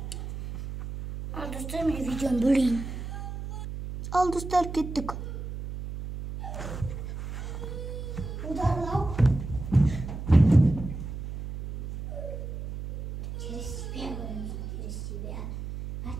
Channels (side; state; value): right; noise; hum, 7 dB below the sound